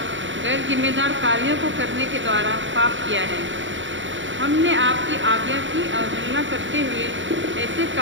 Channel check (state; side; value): late; left; 0.55 ms